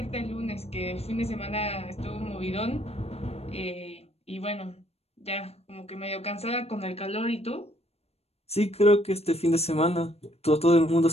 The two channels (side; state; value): right; late; 0.30 ms